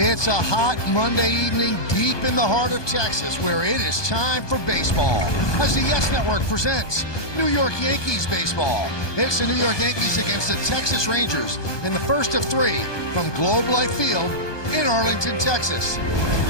a hot Monday evening deep in the heart of Texas where it is time for baseball. As the Yes Network presents New York Yankees baseball. It's the New York Yankees against the Texas Rangers in the first of three from Globe Life Field in Arlington, Texas.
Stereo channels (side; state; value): right; late; 1.2 ms